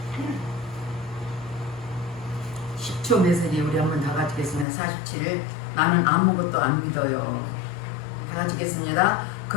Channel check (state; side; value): drops out; right; at 4.7 s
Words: 10초 메시지 우리 한번 다 같이 읽겠습니다. 47을 나는 아무것도 안 믿어요. 다 같이 읽겠습니다.